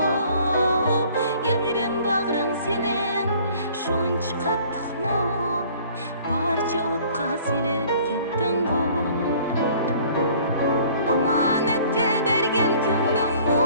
Yayrem bağrın senin şunç kattık mu? Barça otqa silip kettin mu? Amanetke bergen köňlüň mu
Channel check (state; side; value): inverted; both; correlation -0.53